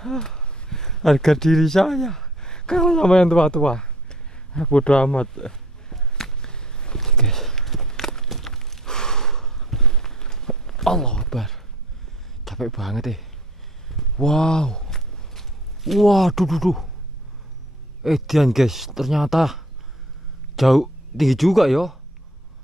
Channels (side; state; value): both; normal; correlation 0.53